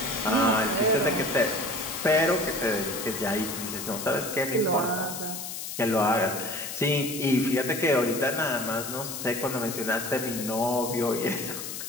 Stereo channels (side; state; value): left; noise; hiss, 7 dB below the sound